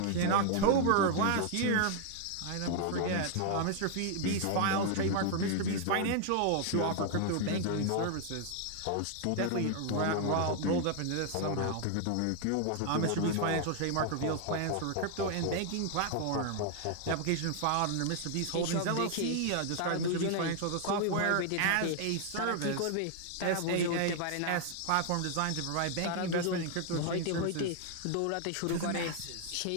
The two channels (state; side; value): different; both; correlation 0.00